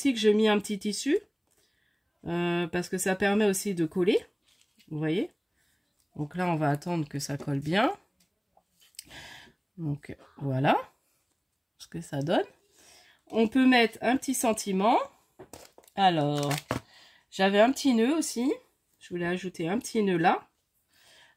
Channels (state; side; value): identical; both; correlation 1.00